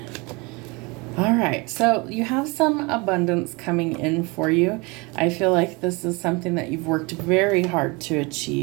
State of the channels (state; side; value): quieter; left; 27.0 dB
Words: All right, so you have some abundance coming in for you. I feel like this is something that you've worked very hard to